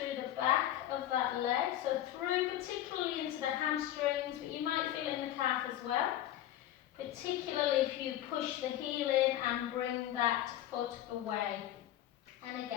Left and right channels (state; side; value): quieter; right; 12.8 dB